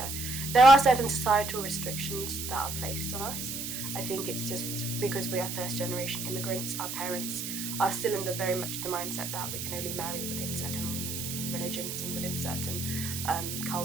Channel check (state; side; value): noise; right; hiss, 5 dB below the sound